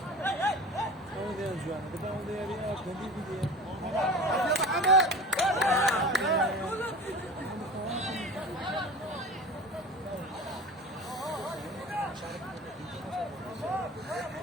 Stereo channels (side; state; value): both; normal; correlation 0.35